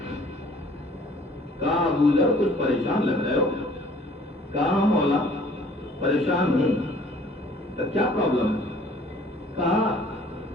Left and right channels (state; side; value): normal; both; correlation 0.54